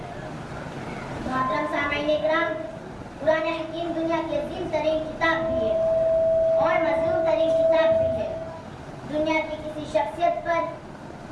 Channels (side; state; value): both; identical; correlation 1.00